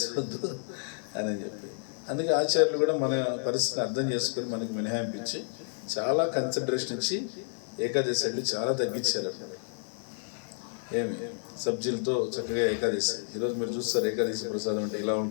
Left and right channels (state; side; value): silent; right; digital silence